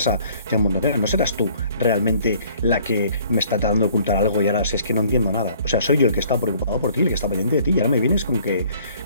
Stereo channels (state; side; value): inverted; both; correlation -0.57